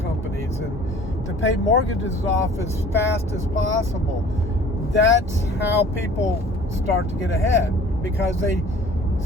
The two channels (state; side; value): normal; both; correlation 0.48